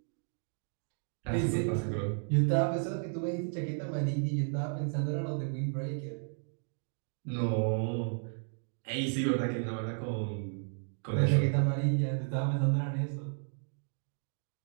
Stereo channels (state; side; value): silent; left; 56 dB below the other